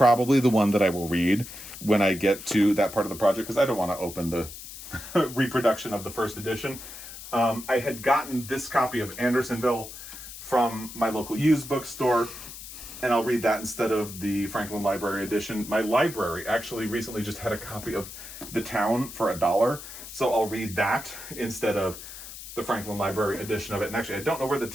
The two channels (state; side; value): noise; left; hiss, 13 dB below the sound